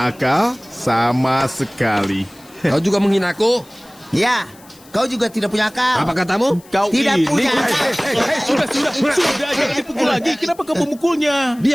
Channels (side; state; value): left; noise; hiss, 25 dB below the sound